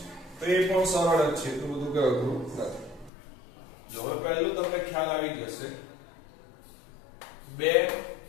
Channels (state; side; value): drops out; right; at 3.1 s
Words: તો એ પણ સરળ જ છે તો બધું કે અઘરું નથી જો હવે પહેલું તમને ખ્યાલ આવી જશે 2